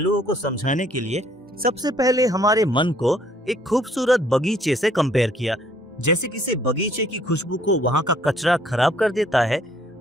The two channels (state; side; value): normal; both; correlation 0.62